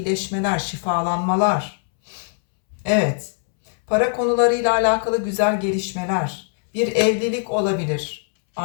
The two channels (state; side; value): silent; right; 65 dB below the other